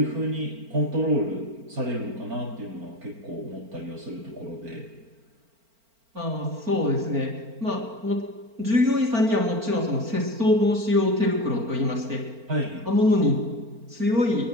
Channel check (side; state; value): left; late; 4.4 ms